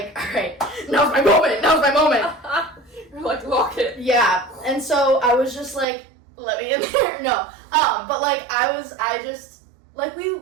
all right, now's my moment. You're like, lock it. Yeah, and so I was just like, let me in there. No, But like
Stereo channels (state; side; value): drops out; left; at 5.9 s